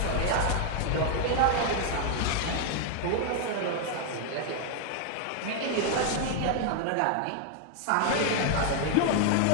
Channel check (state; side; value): different; both; correlation 0.00